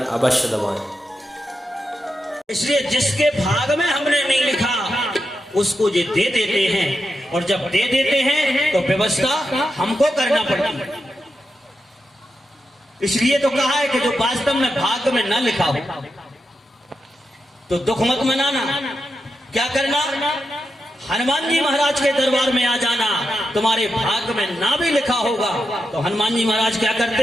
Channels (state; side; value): normal; both; correlation 0.87